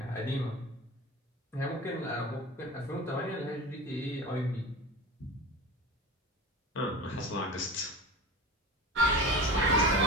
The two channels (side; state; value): both; normal; correlation 0.31